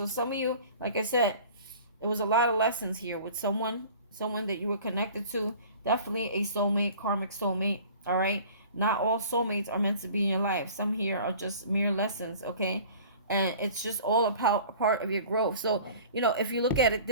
some of you, like I said, there was a lot of lessons here with someone that you were connected to. Definitely a soulmate, karmic soulmate, all right? Not all soulmates are meant to be in your life. Some here are just mere lessons, okay? And it's just all a part of your growth. So, if you look at it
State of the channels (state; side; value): inverted; both; correlation -0.45